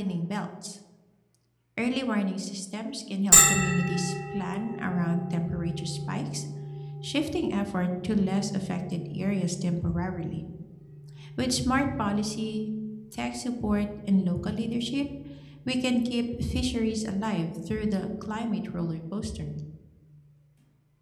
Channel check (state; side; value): identical; both; correlation 1.00